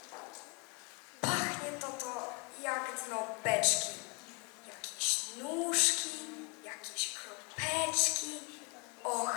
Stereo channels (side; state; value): right; quieter; 32.9 dB